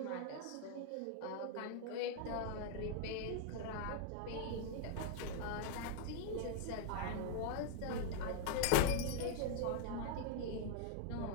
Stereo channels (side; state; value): both; different; correlation -0.01